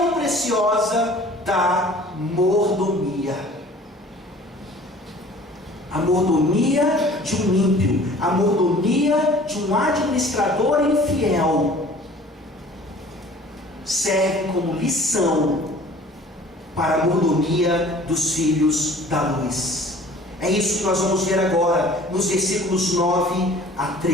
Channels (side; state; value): both; normal; correlation 0.49